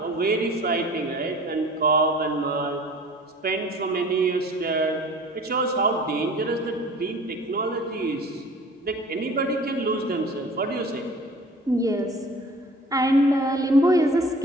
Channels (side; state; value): both; normal; correlation 0.45